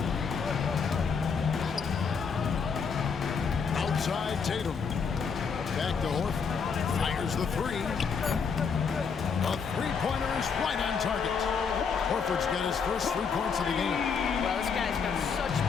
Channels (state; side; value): quieter; right; 5.9 dB